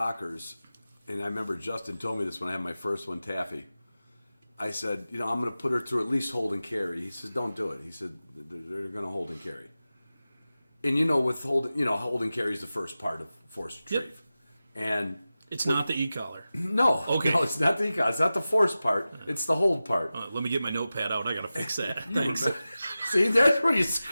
and I remember Justin told me this when I had my first one, Taffy. I said, I'm going to put her through at least hold and carry. He says, don't do it. He said, they're going to hold and carry. And with hold and carry is the first part of force retrieve. Yep. And it's not the e-collar. No. Okay. No, it's not the e-collar. It's not the force part. It's the hold part. Let me get my notepad out. I got to fix that. Thanks. See, that's where you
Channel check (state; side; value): inverted; both; correlation -0.95